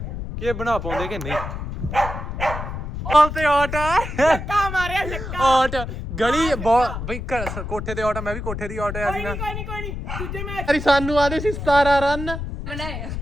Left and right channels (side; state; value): left; noise; rumble, 6 dB below the sound